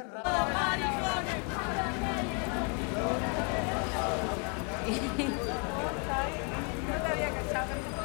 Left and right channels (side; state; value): right; quieter; 36.9 dB